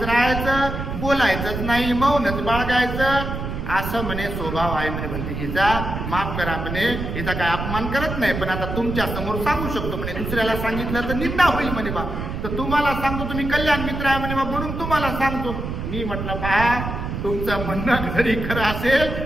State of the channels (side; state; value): right; noise; rumble, 5 dB below the sound